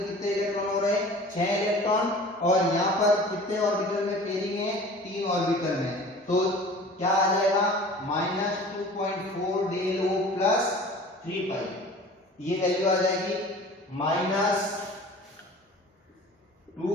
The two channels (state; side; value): normal; both; correlation 0.43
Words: कितने इलेक्ट्रॉन हो रहे हैं, 6 इलेक्ट्रॉन, और यहाँ पर कितने ऑर्बिटल में पेयरिंग है, 3 ऑर्बिटल में, तो क्या आ जाएगा माइनस 2.4 डेल ओ प्लस 3 पाई, ये वैल्यू आ जाएगी माइनस